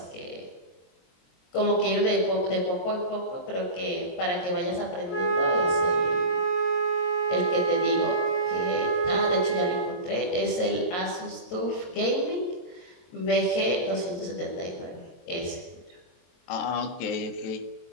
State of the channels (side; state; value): right; late; 23 ms